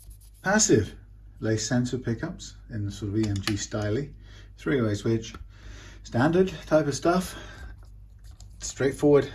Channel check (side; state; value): both; identical; correlation 1.00